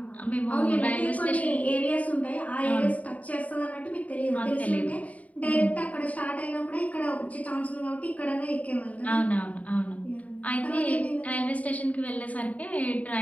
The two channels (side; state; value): right; late; 0.069 ms